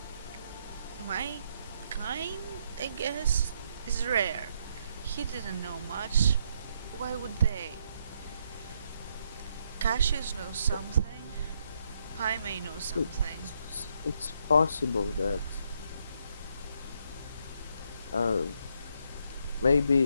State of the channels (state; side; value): inverted; both; correlation -0.74